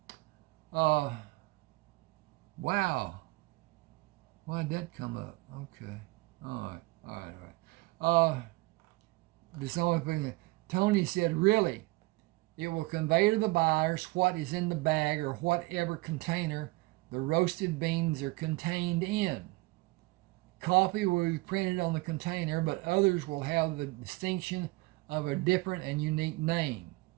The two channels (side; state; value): left; quieter; 22.6 dB